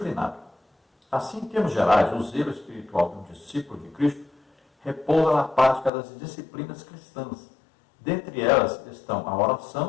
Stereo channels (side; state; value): right; drops out; at 5.9 s